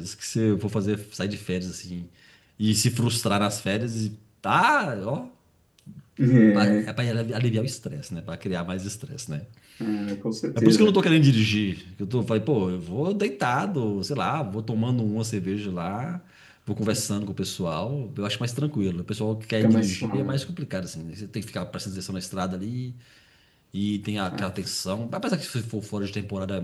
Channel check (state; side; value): identical; both; correlation 1.00